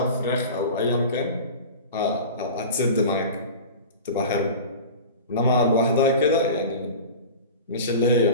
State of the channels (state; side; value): inverted; both; correlation -0.34